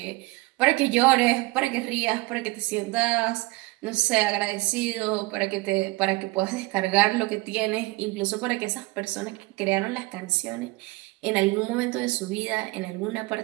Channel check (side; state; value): left; quieter; 22.5 dB